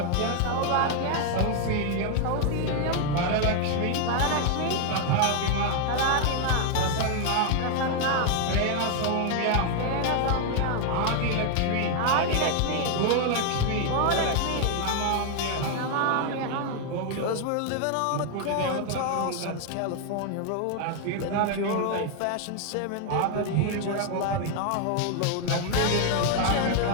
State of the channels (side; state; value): both; different; correlation 0.00